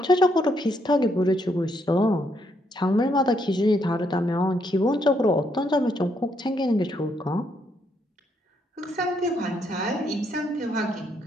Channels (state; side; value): normal; both; correlation 0.74